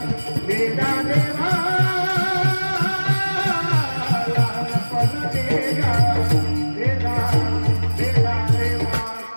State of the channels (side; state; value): both; inverted; correlation -1.00